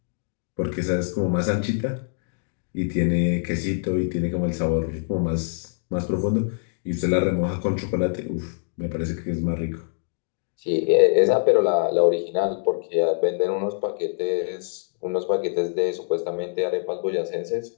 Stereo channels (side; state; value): right; silent; digital silence